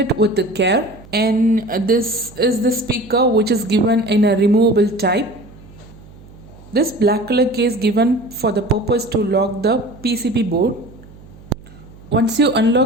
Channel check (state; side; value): noise; right; hum, 21 dB below the sound